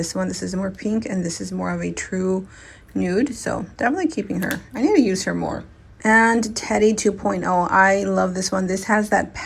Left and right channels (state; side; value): identical; both; correlation 1.00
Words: one. This is more pink and this is more of a true nude, so definitely keeping her. I need to use her more. And Teddy 2.0, I love this one. This has that